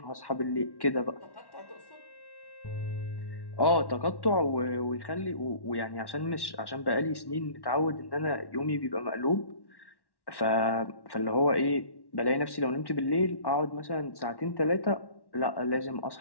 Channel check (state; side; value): late; right; 1.1 ms